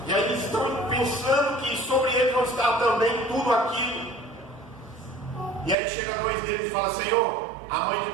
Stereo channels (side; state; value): left; drops out; at 5.8 s